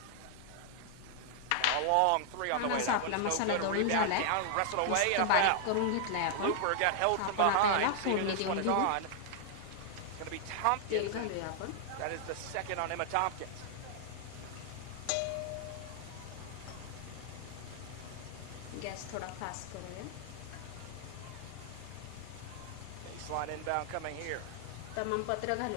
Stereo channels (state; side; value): different; both; correlation 0.00